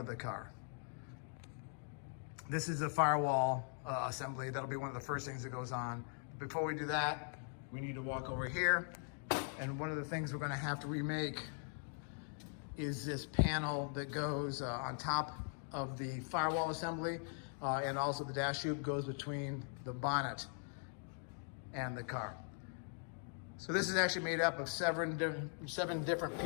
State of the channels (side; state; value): right; silent; 50 dB below the other